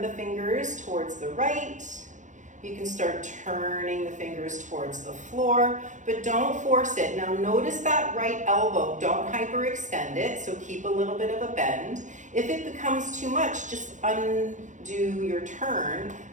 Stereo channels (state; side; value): late; left; 0.36 ms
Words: the fingers towards the right. You can start turning the fingers towards the floor, but don't force it. Now notice that right elbow, don't hyperextend it, so keep a little bit of a bend. If it becomes too much, just undo your turn